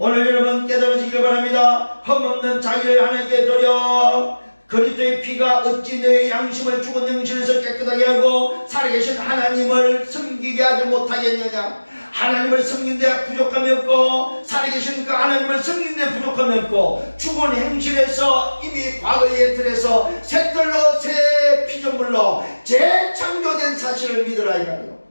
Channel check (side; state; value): both; inverted; correlation -1.00